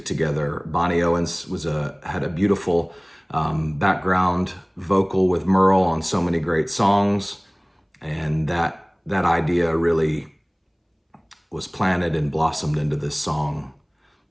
together. Bonnie Owens had a beautiful background vocal with Merle on so many great songs, and that idea really was planted and blossomed into this song.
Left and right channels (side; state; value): both; identical; correlation 1.00